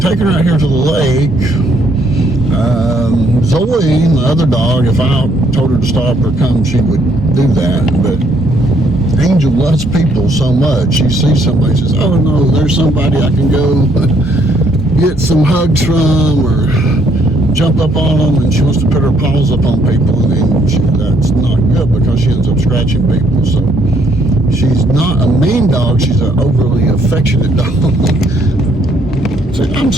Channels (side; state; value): both; normal; correlation 0.68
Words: her out here to the lake, Zoe, my other dog, if I told her to stop or come, she would do that. But Angel loves people so much. She sees somebody, says, oh no, there's somebody I can go get some hugs from, or jump up on them, and she wants to put her paws up on people, and then that's not good because she ends up scratching people. So she's not a mean dog, she's an overly affectionate dog. Say, I'm